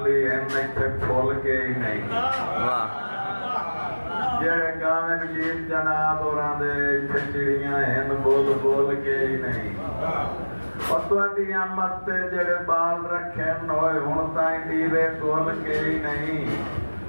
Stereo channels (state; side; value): inverted; both; correlation -1.00